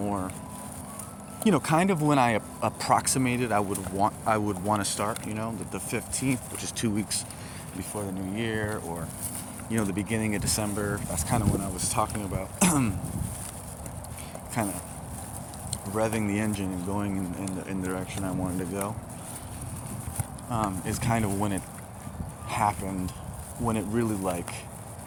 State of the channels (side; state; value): both; identical; correlation 1.00